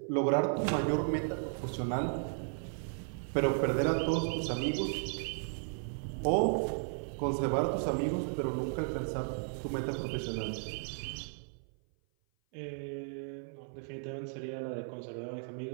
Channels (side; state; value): left; silent; 55 dB below the other